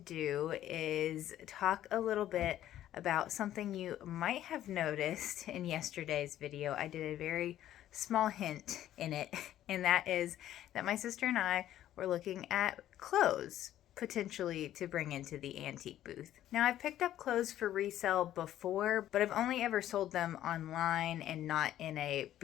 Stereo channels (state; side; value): quieter; right; 12.4 dB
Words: is talk a little bit about something you might have noticed in yesterday's video. I did a very small hint in it, and that is that my sister and I were looking at clothes potentially to bring into the antique booth. Now, I've picked up clothes for resale before, but I've only ever sold them online and not in a